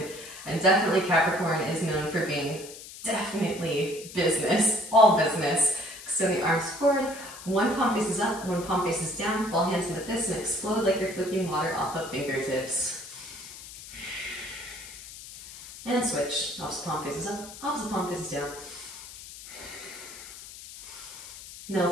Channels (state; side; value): noise; left; hiss, 14 dB below the sound